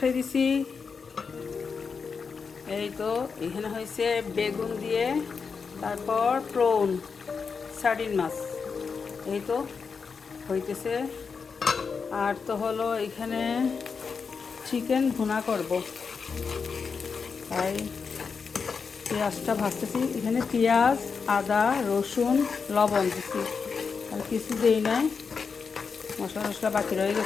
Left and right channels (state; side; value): quieter; right; 5.5 dB